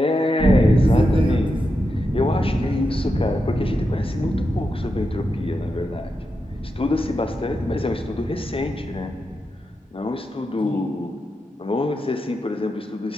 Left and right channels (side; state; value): both; normal; correlation 0.87